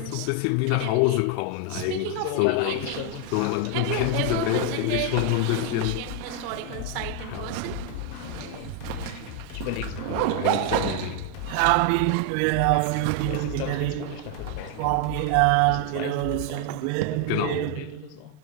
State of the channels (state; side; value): different; both; correlation 0.00